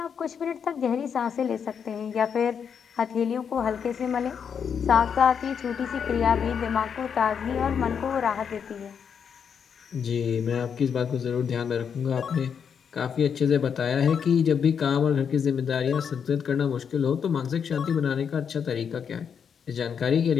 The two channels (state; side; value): quieter; right; 7.2 dB